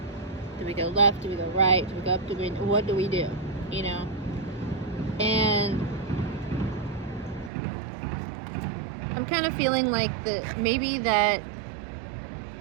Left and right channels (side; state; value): left; drops out; at 7.5 s